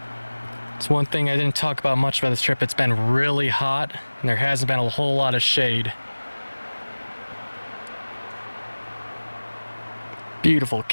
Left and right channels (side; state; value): both; inverted; correlation -1.00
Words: It's one thing I didn't talk about much about this trip. It's been really hot and there hasn't been a whole lot of shade. Beautiful